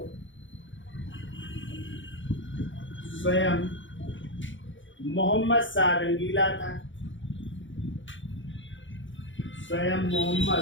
स्वयं मोहम्मद शाह रंगीला था। स्वयं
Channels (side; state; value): right; late; 0.55 ms